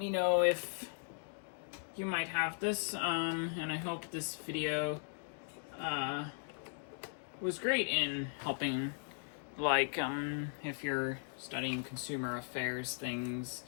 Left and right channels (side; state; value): right; silent; 52 dB below the other